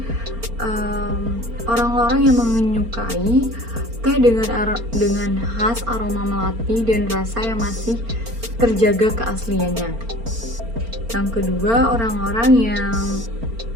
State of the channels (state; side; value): late; left; 4.4 ms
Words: orang-orang yang menyukai teh dengan khas aroma melati dan rasa yang masih terjaga keasliannya. Yang kedua, orang-orang yang